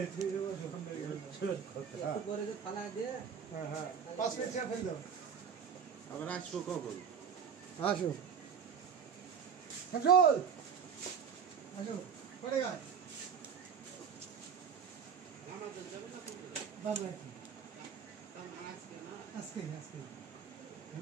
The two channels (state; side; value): quieter; left; 7.0 dB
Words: ঠিক আছে যখন পরে যে থালা দিয়ে হ্যাঁ হ্যাঁ 5 মিনিট চা ফেল দাও আবার আসবো কখন আসো শামসুল আসো পড়ে গা আমাদের যাবে না বাবা আজকে